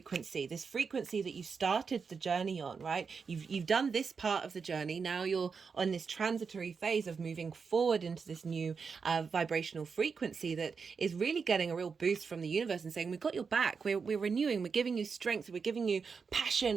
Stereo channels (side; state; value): left; quieter; 5.5 dB